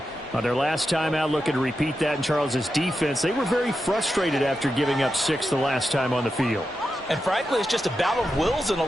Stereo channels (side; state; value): both; normal; correlation 0.89